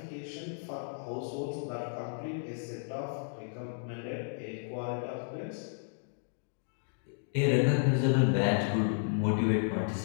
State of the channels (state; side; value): silent; right; digital silence